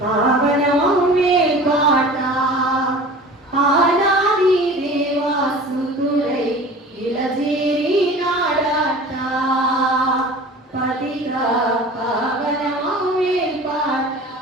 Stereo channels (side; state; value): both; normal; correlation 0.40